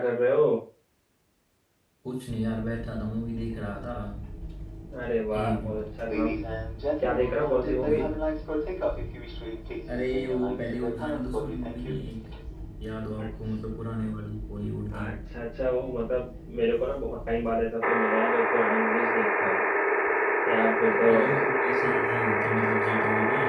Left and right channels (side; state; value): both; identical; correlation 1.00